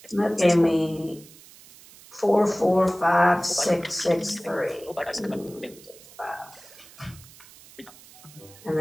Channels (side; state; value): right; noise; hiss, 22 dB below the sound